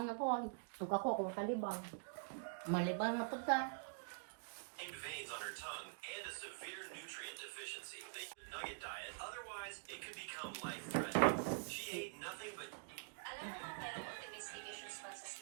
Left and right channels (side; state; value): left; silent; digital silence